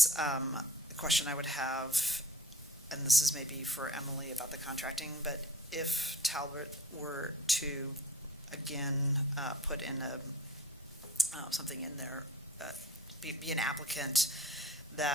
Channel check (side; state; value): both; normal; correlation 0.45